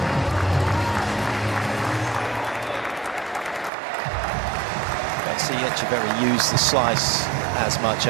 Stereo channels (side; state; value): left; drops out; at 3.7 s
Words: See Etcheverry use the slice as much,